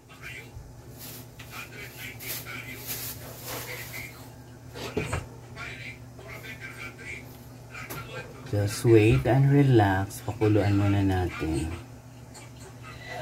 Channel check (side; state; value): both; identical; correlation 1.00